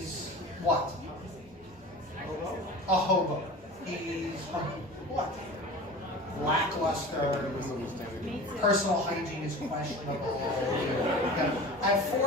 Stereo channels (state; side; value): normal; both; correlation 0.36